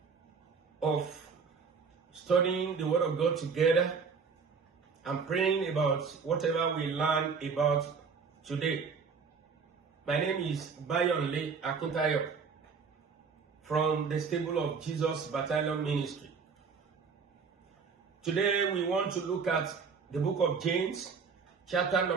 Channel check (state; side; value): quieter; left; 5.5 dB